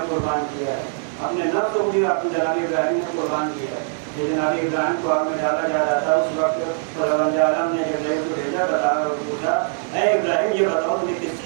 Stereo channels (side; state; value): left; silent; digital silence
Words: قربان کیا ہے اپنے نفس کو بھی اپنے جناب ابراہیم نے قربان کیا ہے. جناب ابراہیم کو آگ میں ڈالا جا رہا تھا اس وقت خداوند عالم نے ابراہیم کو بھیجا بتایا اور پوچھا اے ابراہیم یہ بتاؤ تمہیں کس